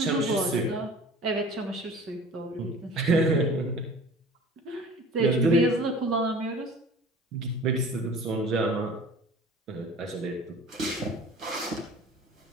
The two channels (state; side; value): normal; both; correlation 0.43